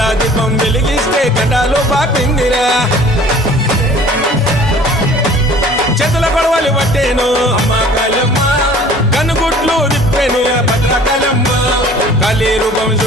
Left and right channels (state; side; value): normal; both; correlation 0.49